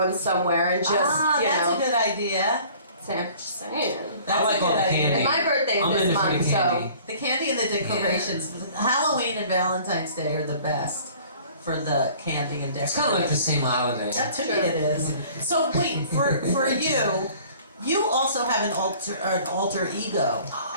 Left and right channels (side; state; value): both; inverted; correlation -0.50